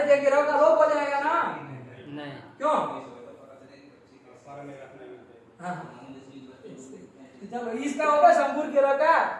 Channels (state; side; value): identical; both; correlation 1.00